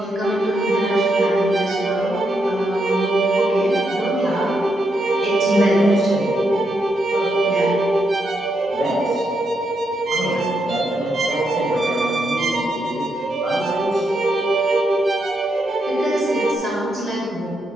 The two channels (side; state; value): both; normal; correlation 0.80